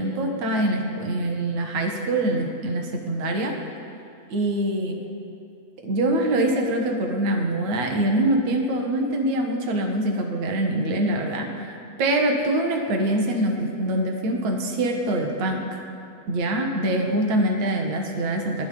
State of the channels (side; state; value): left; late; 8.2 ms